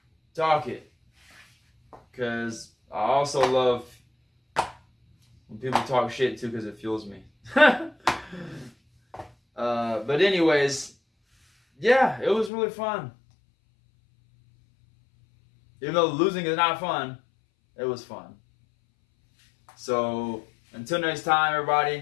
it. Because I also love when people talk shit too, because it fuels me. But anyways, yeah, it was really fun. Even though losing is not fun, it was fun. So until next time,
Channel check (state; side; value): drops out; right; at 12.5 s